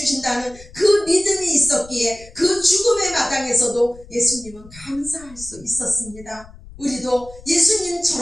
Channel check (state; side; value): noise; left; rumble, 20 dB below the sound